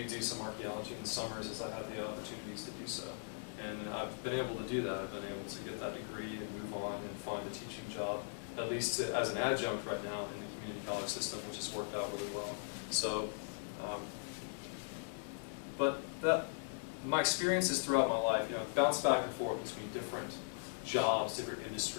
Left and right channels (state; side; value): silent; right; digital silence